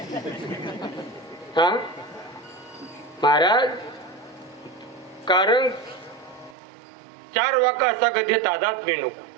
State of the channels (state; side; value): drops out; left; at 6.6 s